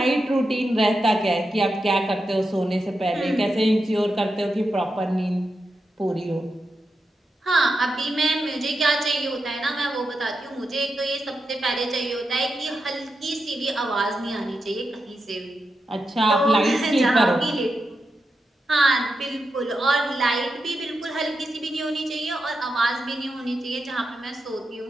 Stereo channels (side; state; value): both; normal; correlation 0.88